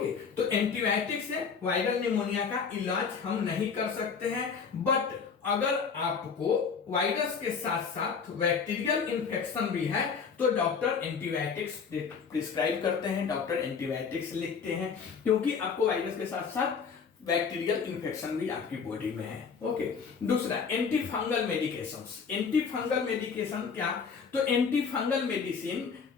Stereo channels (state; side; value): quieter; right; 6.0 dB